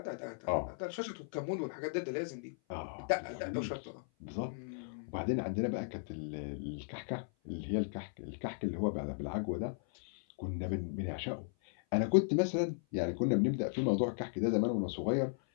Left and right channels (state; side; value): silent; right; 54 dB below the other